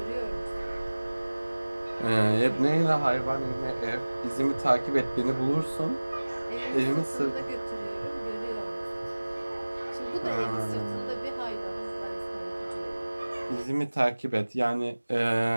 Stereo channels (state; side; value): inverted; both; correlation -1.00